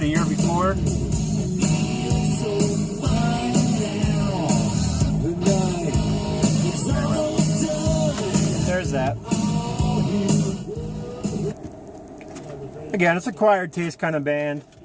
year before. There's that. Again, it's a acquired taste kind of band.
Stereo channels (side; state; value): both; identical; correlation 1.00